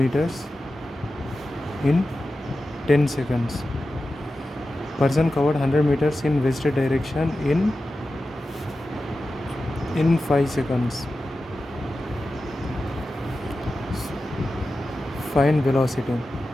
in 10 seconds. Person covered 100 meters in west direction in 5 seconds. Find velocity.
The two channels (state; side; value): normal; both; correlation 0.93